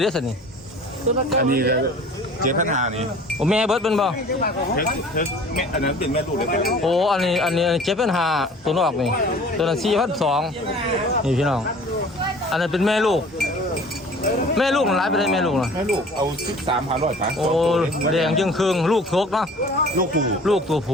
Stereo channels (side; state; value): both; normal; correlation 0.46